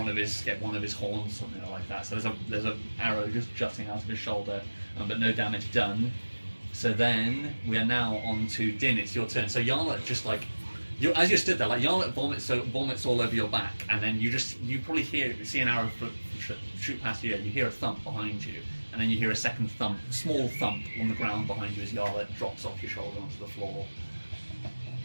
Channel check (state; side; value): inverted; both; correlation -1.00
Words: of his horns, something like that. So there's a arrow just jutting out of his shoulder, but no damage done. So then we are now on to Din. It's your turn. So Yarlet just like as you stood there, like Yarlet vomits all over your back, and then you probably see an arrow shoot past you. You hear a thump behind you, and then you hear a second thump, small thump on the ground behind you as Yarlet drops off your shoulder onto the floor.